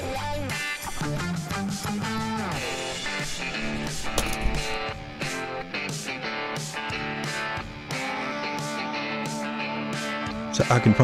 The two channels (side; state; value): both; identical; correlation 1.00